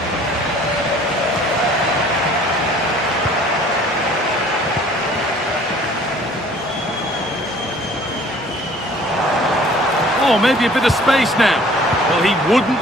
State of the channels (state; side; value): normal; both; correlation 0.53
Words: Oh, maybe a bit of space now. Well, he